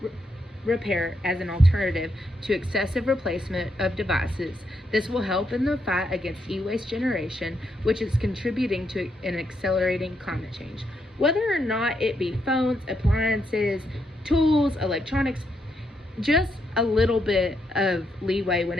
repair as an alternative to excessive replacement of devices. This will help in the fight against e-waste generation, which is contributing to an accelerating climate change. Whether or not it be phones, appliances, tools, electronics, just a little bit of leeway when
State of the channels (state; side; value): normal; both; correlation 0.79